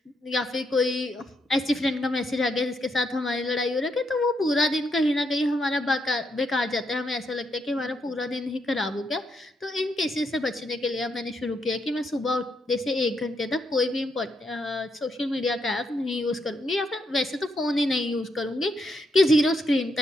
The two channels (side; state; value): both; normal; correlation 0.78